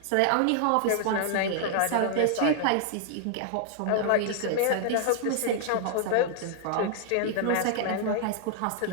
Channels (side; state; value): both; different; correlation -0.01